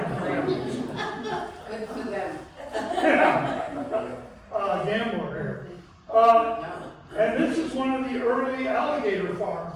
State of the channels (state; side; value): identical; both; correlation 1.00